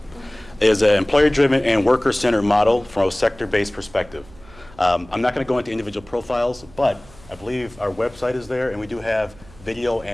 is an employer-driven and worker-centered model from a sector-based perspective. I'm not going to go into individual profiles, but I believe our website is there, and we do have video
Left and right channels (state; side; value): noise; right; hum, 23 dB below the sound